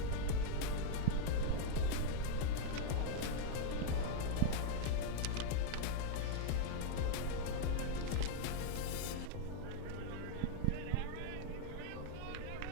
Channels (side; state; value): both; different; correlation -0.01